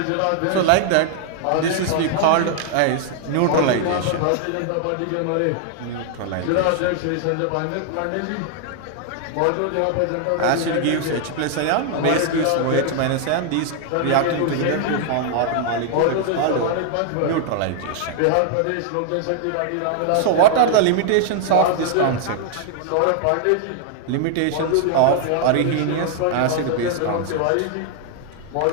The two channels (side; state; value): both; different; correlation 0.00